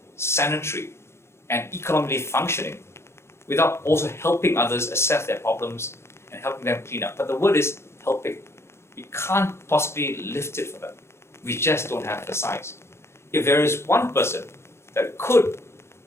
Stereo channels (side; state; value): right; late; 0.13 ms